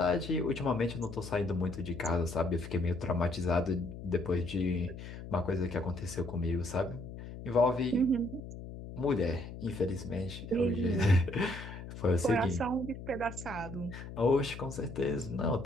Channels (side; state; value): left; noise; hum, 11 dB below the sound